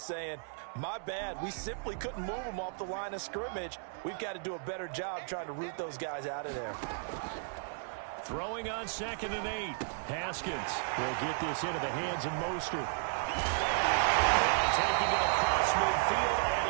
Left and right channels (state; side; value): silent; left; 55 dB below the other